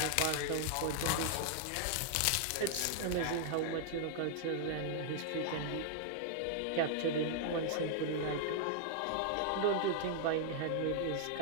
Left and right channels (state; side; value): different; both; correlation 0.00